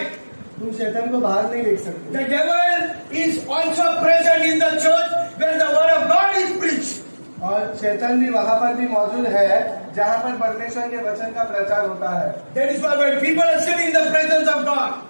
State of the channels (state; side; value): inverted; both; correlation -1.00